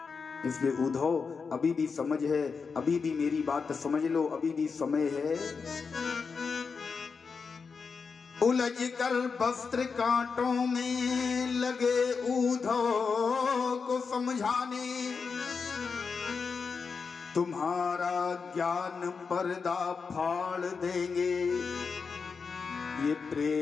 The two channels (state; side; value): quieter; right; 5.3 dB